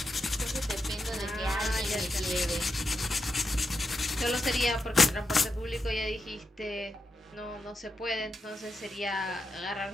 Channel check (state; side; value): normal; both; correlation 0.86